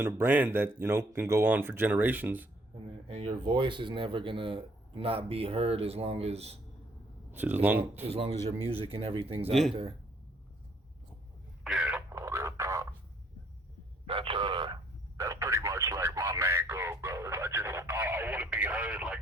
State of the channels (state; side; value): normal; both; correlation 0.65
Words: a brand that, can go on for generations. And your voice is never going to not be heard as long as your music and everything's out there. Yeah, real talk. That's pretty much like my main goal, bro. I want to be heard, like